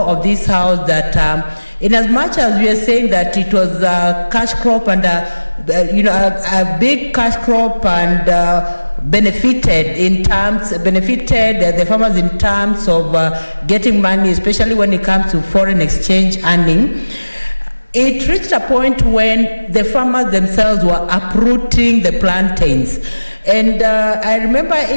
this House that in as much as we are saying that it was a cash crop and a big cash crop and benefited the farmers in terms of getting money, especially when it comes to foreign exchange earning, it reached a point when the farmers themselves were uprooting the plantains. And I remember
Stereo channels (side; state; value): both; inverted; correlation -1.00